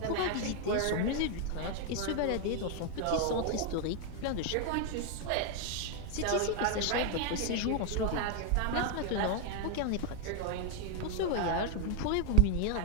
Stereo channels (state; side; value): different; both; correlation 0.00